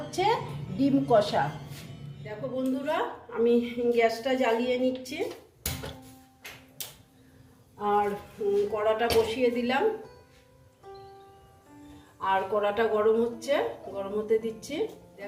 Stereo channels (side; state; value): both; identical; correlation 1.00